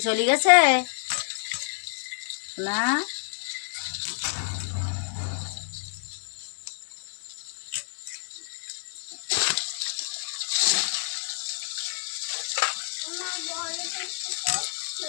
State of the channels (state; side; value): silent; right; 59 dB below the other